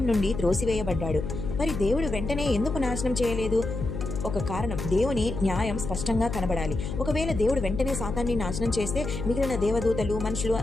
నుండి త్రోసివేయబడ్డాడు. మరి దేవుడు వెంటనే ఎందుకు నాశనం చేయలేదు? ఒక కారణం, దేవుని న్యాయం స్పష్టంగా కనబడాలి. ఒకవేళ దేవుడు వెంటనే సాతాన్ని నాశనం చేస్తే మిగిలిన దేవదూతలు, మనుషులు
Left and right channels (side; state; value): left; noise; hum, 5 dB below the sound